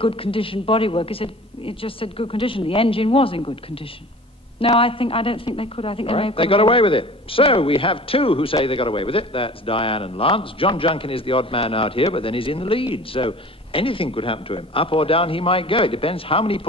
condition bodywork. It just said good condition. The engine was in good condition. No, I don't think they could. I think they got away with it. So we have two who say they got away with it. That's Diane and Lance. John Junkin is the odd man out here, but then he's in the lead. So anything could happen to him. Up or down he might go. It depends how many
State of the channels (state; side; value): normal; both; correlation 0.43